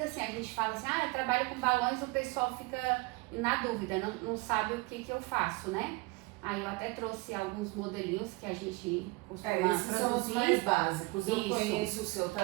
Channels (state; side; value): quieter; left; 25.1 dB